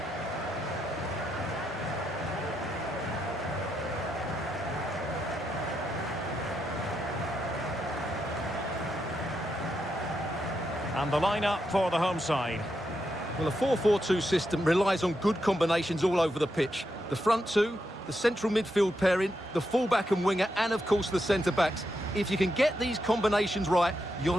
And the lineup for the home side. Well, a 4-4-2 system relies on good combinations all over the pitch. The front two, the central midfield pairing, the fullback and winger, and of course the centre-backs. If you can get these combinations right, you'll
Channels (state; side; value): normal; both; correlation 0.83